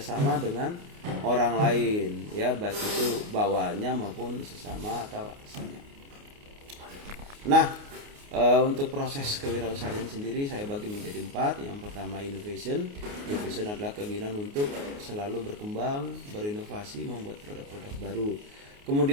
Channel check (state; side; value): late; left; 29 ms